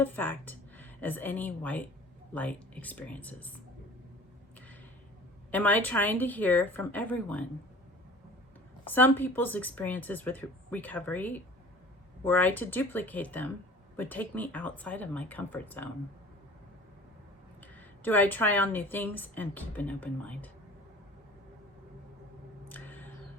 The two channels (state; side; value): normal; both; correlation 0.44